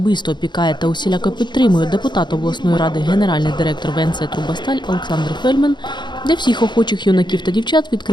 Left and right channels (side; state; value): right; late; 0.22 ms